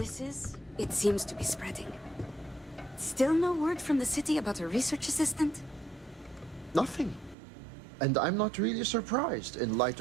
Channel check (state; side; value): drops out; left; at 7.4 s